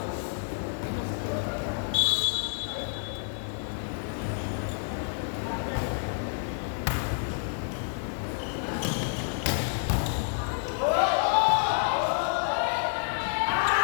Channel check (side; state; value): right; silent; digital silence